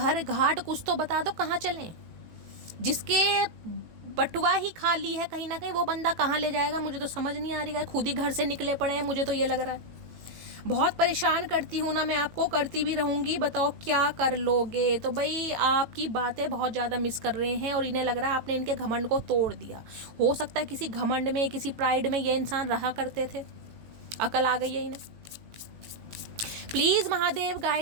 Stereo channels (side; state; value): left; late; 18 ms